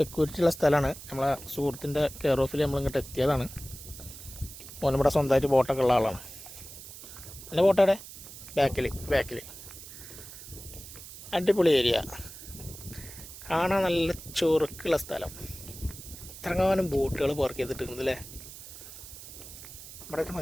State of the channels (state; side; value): noise; right; hiss, 14 dB below the sound